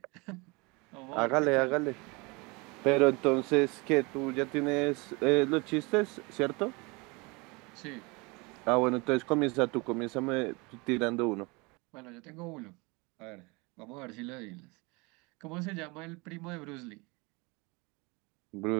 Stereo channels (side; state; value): left; quieter; 27.2 dB